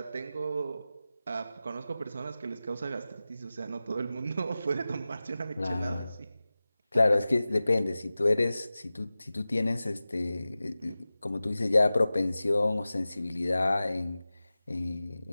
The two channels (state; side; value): inverted; both; correlation -0.96